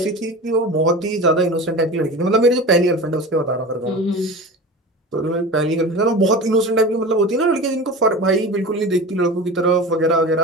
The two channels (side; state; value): both; normal; correlation 0.32